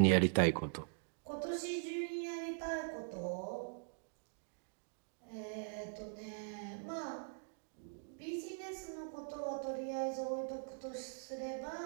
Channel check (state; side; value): silent; left; digital silence